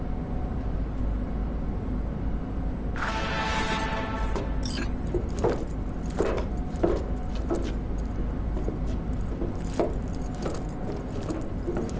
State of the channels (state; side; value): identical; both; correlation 1.00